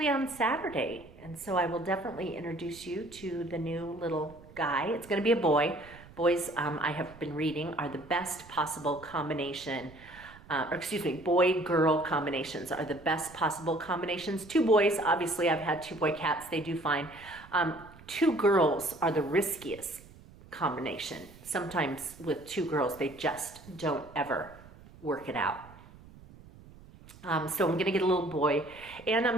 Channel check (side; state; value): right; noise; rumble, 21 dB below the sound